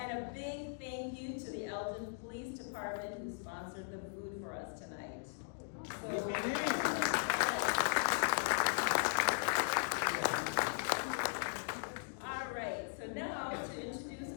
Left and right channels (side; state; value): right; silent; digital silence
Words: a big thank you to the Elgin Police Department who sponsored the food for us tonight. All right, so now to